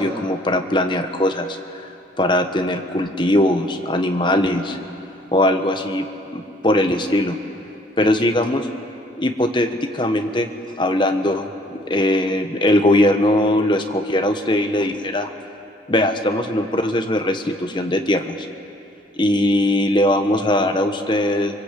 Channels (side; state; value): both; normal; correlation 0.59